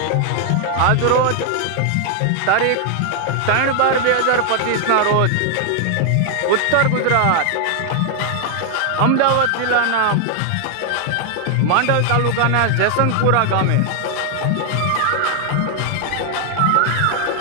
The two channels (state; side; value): different; both; correlation 0.00